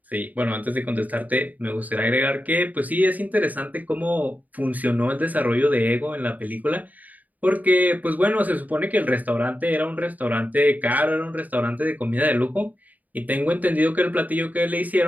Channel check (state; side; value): late; left; 0.078 ms